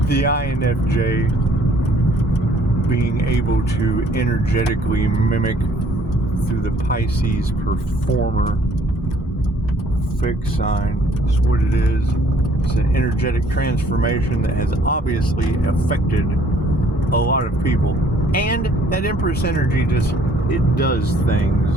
the INFJ being able to energetically mimic through the Pisces performer fixed sign. That's what it is. It's an energetic transformation that has obviously affected a lot of people. And that Empress energy it does things.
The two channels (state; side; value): normal; both; correlation 0.60